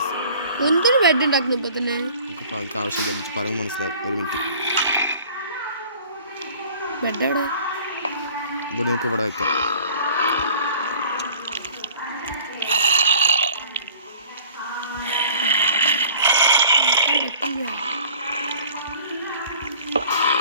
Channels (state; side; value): inverted; both; correlation -0.48